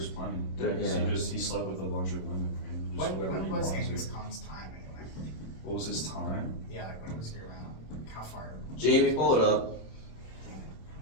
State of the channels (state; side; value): late; right; 27 ms